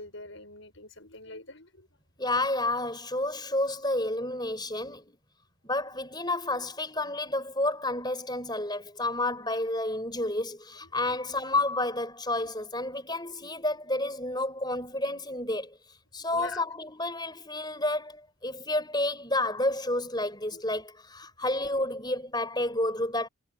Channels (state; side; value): normal; both; correlation 0.38